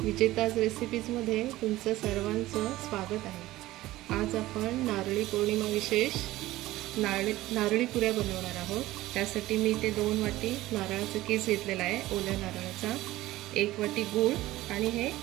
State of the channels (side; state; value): left; quieter; 16.8 dB